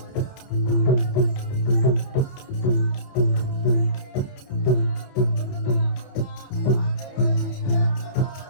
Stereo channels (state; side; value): late; right; 30 ms